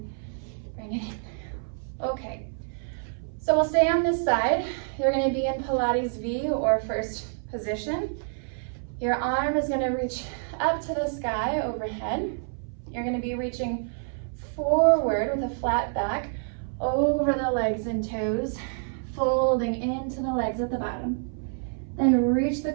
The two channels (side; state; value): left; silent; 59 dB below the other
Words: bring it in. Okay, so we'll stay on this side. You're going to be in Pilates V or first position. Your arm is going to reach up to the sky overhead. You're going to be reaching forward with a flat back over the legs and toes, folding into the legs at the bottom. Then reach the